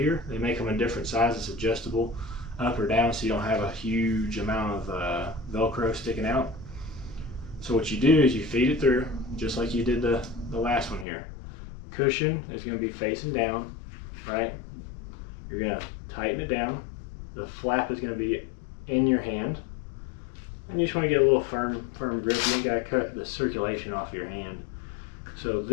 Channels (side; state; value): right; drops out; at 11.1 s